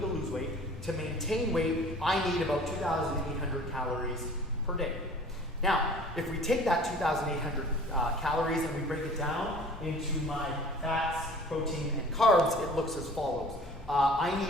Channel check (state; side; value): normal; both; correlation 0.47